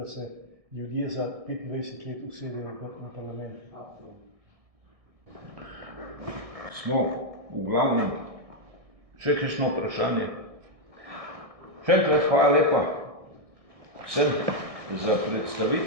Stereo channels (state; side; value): late; left; 1.6 ms